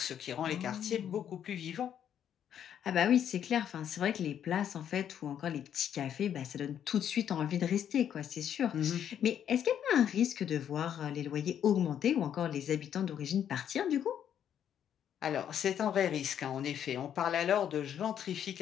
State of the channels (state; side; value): quieter; right; 9.4 dB